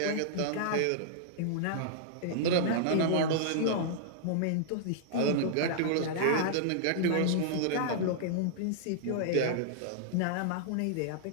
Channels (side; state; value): both; different; correlation -0.01